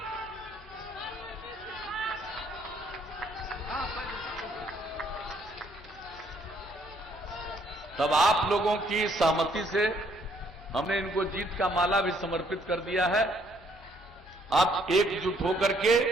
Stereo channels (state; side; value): normal; both; correlation 0.66